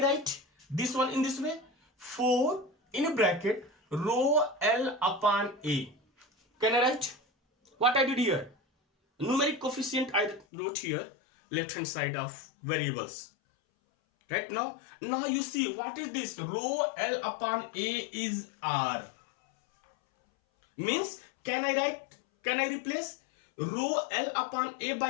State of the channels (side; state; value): right; drops out; at 10.5 s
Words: write this one in this way? 4 in bracket rho L upon A. Can I write? What I did here? Numeric coefficient I wrote here, left hand side of variables. Right now you see what is this? Rho L upon A is R. Means can I replace rho L upon A